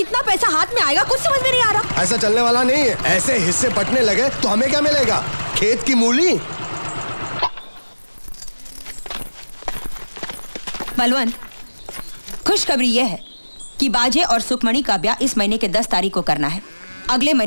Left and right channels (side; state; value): both; inverted; correlation -1.00